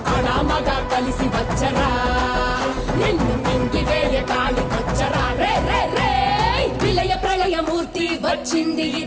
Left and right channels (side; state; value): both; identical; correlation 1.00